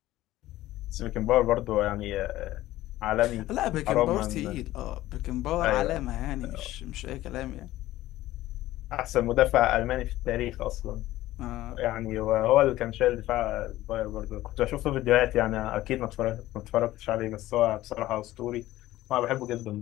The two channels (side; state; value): right; quieter; 15.7 dB